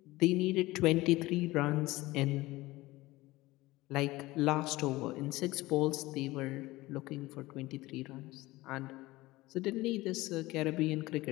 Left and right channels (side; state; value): right; quieter; 19.3 dB